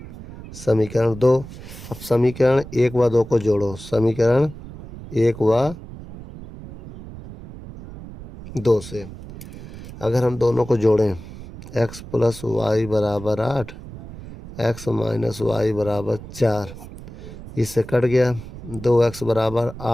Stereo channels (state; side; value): noise; right; rumble, 14 dB below the sound